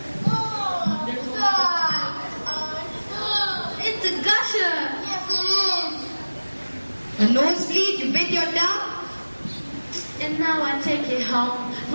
It's a gusher. Yes, it is. A nosebleed, you bit your tongue? And now I take it home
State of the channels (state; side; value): inverted; both; correlation -1.00